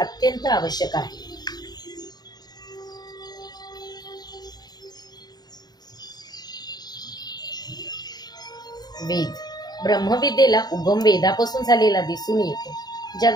आवश्यक आहे। वेद, ब्रह्मविद्येला उगम वेदापासून झालेला दिसून येतो।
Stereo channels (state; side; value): late; right; 0.20 ms